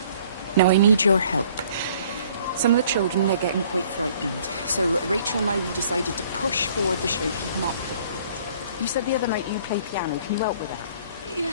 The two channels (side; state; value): both; inverted; correlation -0.57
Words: Now, I need your help. Some of the children, they're getting quite frightened. So Rachel and I, we decided to push forward the show, keep them up. You said the other night you play piano. Can you help with that?